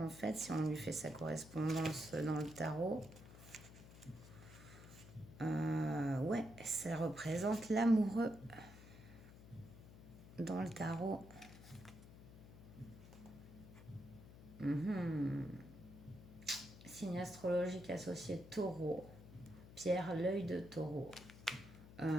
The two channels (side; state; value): left; noise; hum, 17 dB below the sound